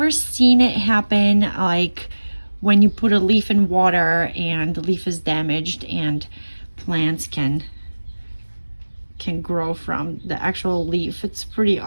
seen it happen like when you put a leaf in water and the leaf is damaged and plants can grow from the actual leaf. It's pretty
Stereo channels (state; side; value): inverted; both; correlation -1.00